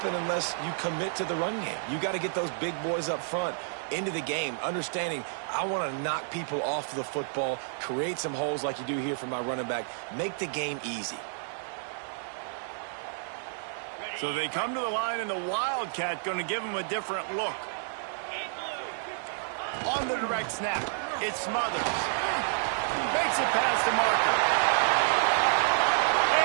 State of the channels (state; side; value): silent; left; digital silence